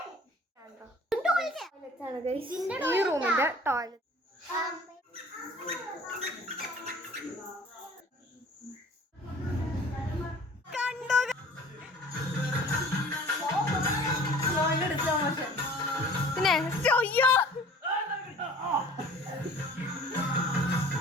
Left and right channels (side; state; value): both; normal; correlation 0.47